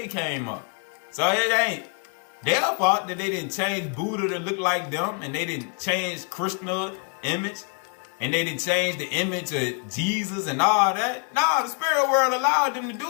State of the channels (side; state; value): right; quieter; 37.2 dB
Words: came up. So it ain't their fault that they didn't change Buddha to look like them, and they didn't change Krishna's image, and they didn't change the image of Jesus and all that. No, the spirit world allowed them to